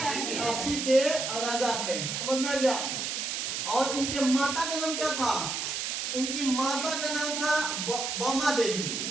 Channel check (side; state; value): right; noise; hiss, 2 dB below the sound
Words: काशी के राजा थे, समझ में आ गया। और इनके माता का नाम क्या था, इनकी माता का नाम था वामा देवी।